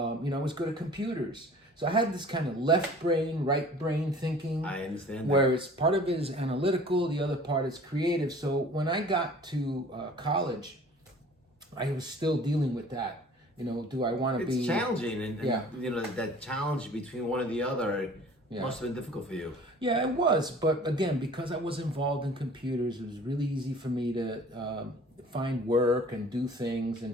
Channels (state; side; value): normal; both; correlation 0.48